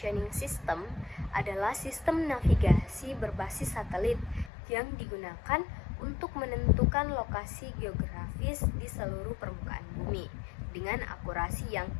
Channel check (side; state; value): right; drops out; at 4.5 s